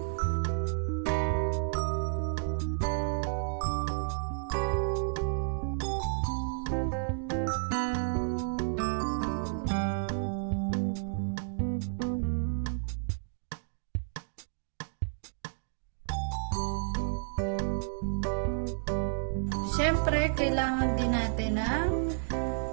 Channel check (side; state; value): left; silent; digital silence